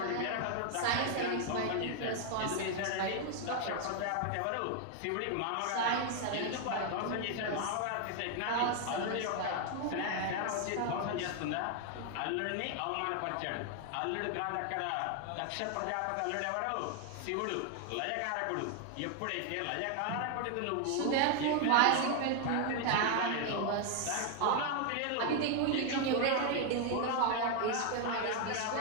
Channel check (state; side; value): different; both; correlation 0.01